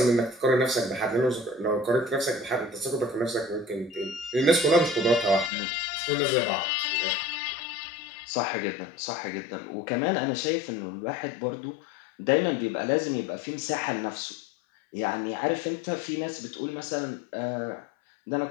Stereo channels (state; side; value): drops out; right; at 5.5 s